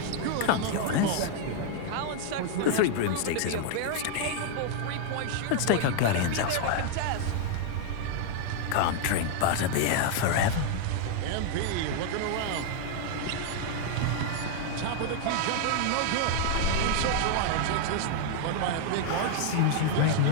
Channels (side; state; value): both; different; correlation 0.00